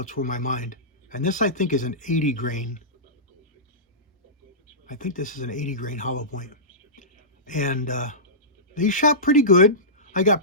were my mind. And this, I think, is an 80 grain. I think this is an 80 grain hollow point. And they shot pretty good. I got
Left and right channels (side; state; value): both; normal; correlation -0.19